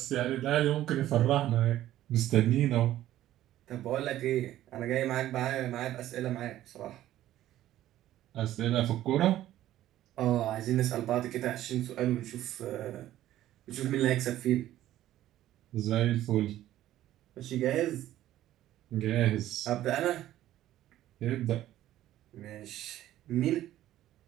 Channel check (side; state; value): left; quieter; 13.6 dB